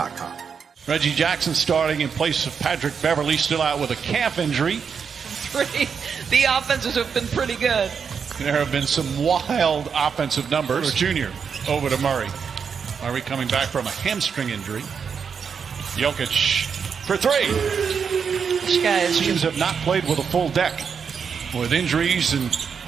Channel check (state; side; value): quieter; left; 6.5 dB